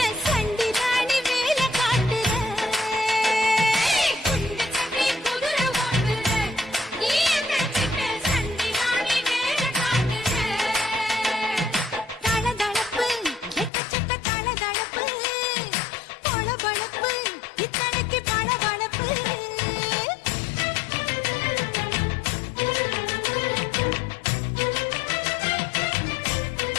சண்டி ராணி வேலை காட்டுற. குண்டு கட்டி குதிரை ஓட்டுற நீ எங்க கிட்ட சண்டி ராணி வேலை காட்டுற. தளதளப்பு எக்கச்சக்க தளதளப்பு பளபளப்பு இத்தனைக்கு பளபளப்பு.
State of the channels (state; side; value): drops out; right; at 13.7 s